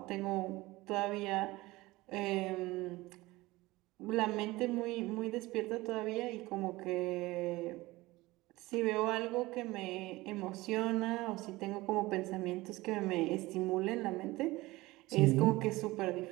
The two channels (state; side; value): quieter; left; 20.0 dB